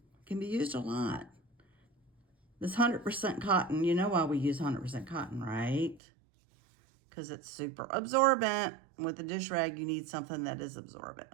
be used a lot. This 100% cotton, you know why we use 100% cotton, right? Because it's super absorbent. With the dish rag, you need something that is absorbent.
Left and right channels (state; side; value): drops out; left; at 6.0 s